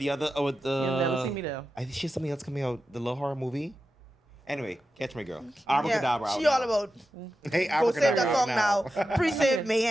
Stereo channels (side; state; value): both; normal; correlation 0.91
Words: other with the. You'll never see me there. I think she has something else coming out. The little horror movie. Anyway, Catch My Girl. Yeah, Abracadabra. she out all now. about Hey, go save that Abracadabra song out now. Pre-save